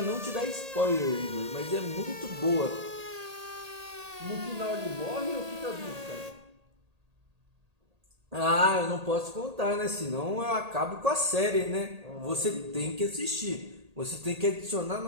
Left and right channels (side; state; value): left; late; 1.8 ms